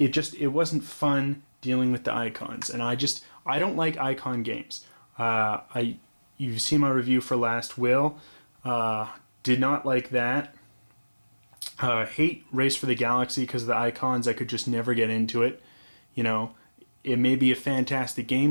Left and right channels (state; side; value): inverted; both; correlation -1.00